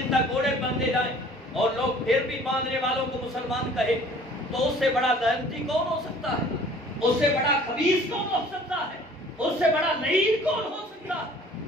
تک گھوڑے باندھے جائیں اور لوگ پھر بھی باندھنے والوں کو مسلمان کہے، تو اس سے بڑا لعنتی کون ہو سکتا ہے؟ اس سے بڑا خبیث کون ہو سکتا ہے؟ اس سے بڑا لعین کون ہو سکتا ہے؟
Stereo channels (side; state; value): both; normal; correlation 0.51